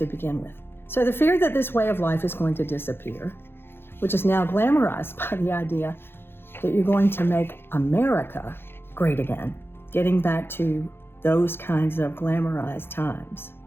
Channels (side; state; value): right; late; 0.11 ms